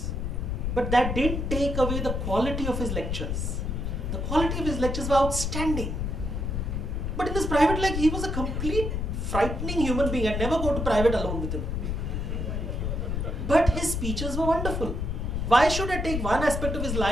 but that didn't take away the quality of his lectures. The quality of his lectures were outstanding. But in his private life, he was a complete frightening human being. I'd never go to private alone with him. But his speeches were wonderful. Why should I take one aspect of his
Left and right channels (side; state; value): left; noise; rumble, 2 dB below the sound